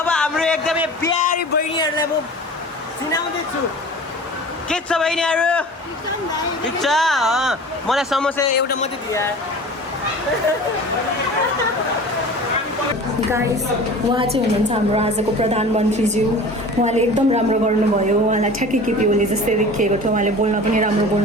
हाम्रो एकदमै प्यारी बहिनीहरूलाई म चिनाउँदैछु। के छ बहिनीहरू? ठिक छ। मलाई समोसा एउटा मात्रै दिए। गाइस उहाँ चाहिँ हुनुहुन्छ हाम्रो आजको प्रधानमन्त्रीज्यू उहाँले एकदम राम्रो गर्नुभयो उहाँलाई ठ्याक्कै केपी ओली जस्तै देखिएको थियो उहाँले बोल्न पनि राम्रो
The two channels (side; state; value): both; normal; correlation 0.39